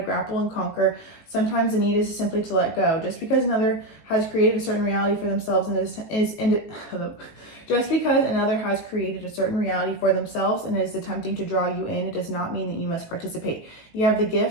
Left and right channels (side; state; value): right; late; 18 ms